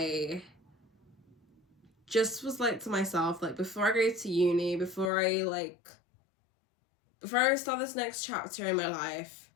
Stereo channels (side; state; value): right; drops out; at 5.1 s